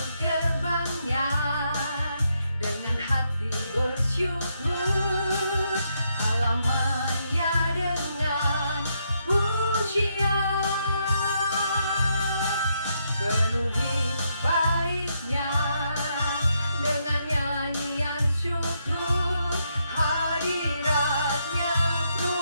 gerbangnya dengan hati bersyukur, halamannya dengan pujian, penuhi baitnya dengan nyanyian syukur, hadiratnya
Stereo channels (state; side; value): inverted; both; correlation -0.78